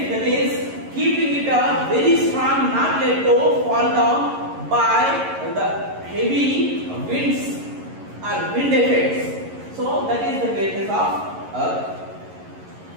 that is keeping it a very strong, not let to fall down by the heavy winds or wind effects. So that is the greatness of earth.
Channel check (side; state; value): left; late; 11 ms